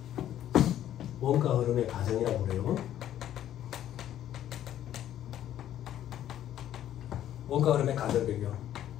원가 흐름의 가정이라고 그래요. 원가 흐름의 가정 변경.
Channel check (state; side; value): quieter; right; 11.6 dB